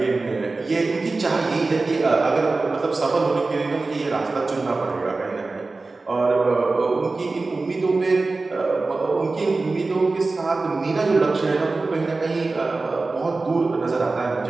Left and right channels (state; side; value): quieter; left; 3.6 dB